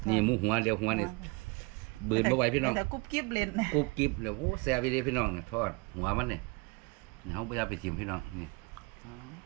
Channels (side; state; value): left; quieter; 28.9 dB